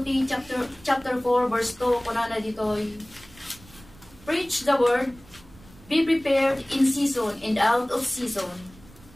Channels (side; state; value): right; noise; rumble, 24 dB below the sound